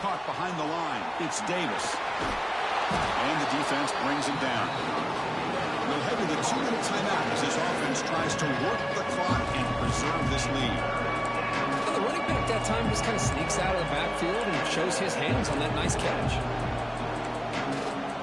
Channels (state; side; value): identical; both; correlation 1.00